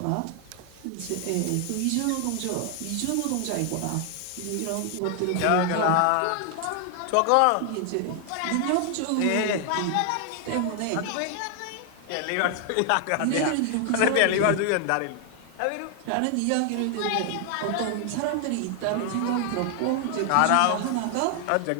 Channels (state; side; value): different; both; correlation 0.00